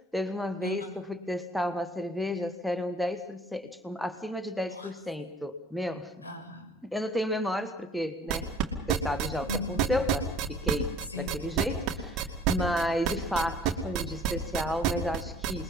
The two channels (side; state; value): both; normal; correlation 0.52